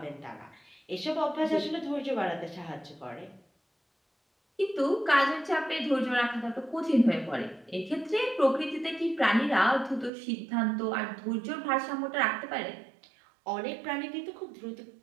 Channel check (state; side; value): drops out; left; at 10.1 s